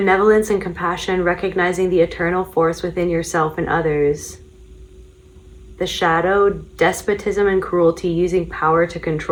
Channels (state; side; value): identical; both; correlation 1.00